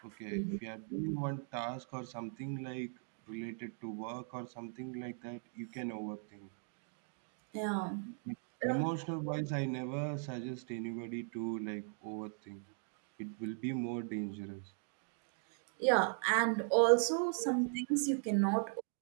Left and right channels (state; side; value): silent; left; 52 dB below the other